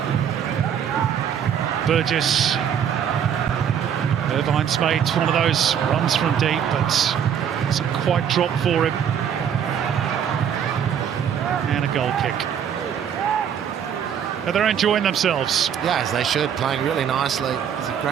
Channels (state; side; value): quieter; left; 8.5 dB